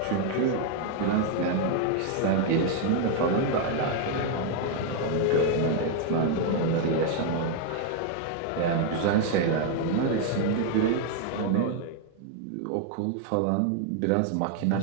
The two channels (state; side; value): different; both; correlation 0.00